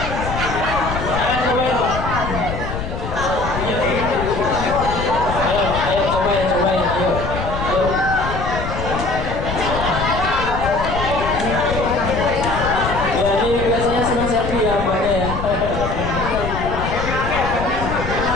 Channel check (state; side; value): noise; left; rumble, 5 dB below the sound